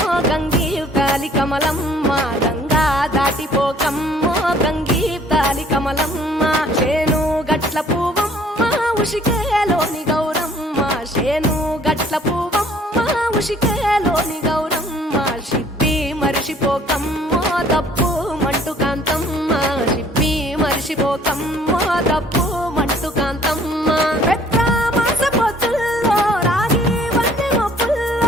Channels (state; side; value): normal; both; correlation 0.57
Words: గంగీ కాలి కమలమ్మ గంగా దాటిపోకమ్మో గంగీ కాలి కమలమ్మ చేను గట్ల పువ్వమ్మ ఉషికేలోని గౌరమ్మ చేను గట్ల పువ్వమ్మ ఉషికేలోని గౌరమ్మ షిప్పి మరిషిపోకమ్మో తప్పు మంటు కాంతమ్మ షిప్పి మరిషిపోకమ్మో తప్పు మంటు కాంతమ్మ పెద్ద మాస పొత్తుల్లో రాగి వన్నె